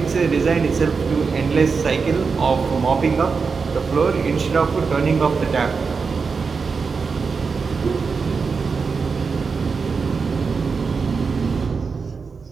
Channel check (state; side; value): quieter; left; 5.1 dB